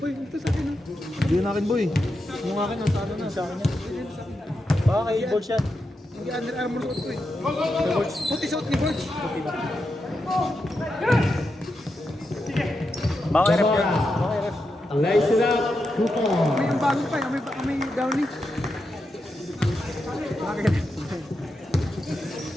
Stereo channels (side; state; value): both; normal; correlation 0.86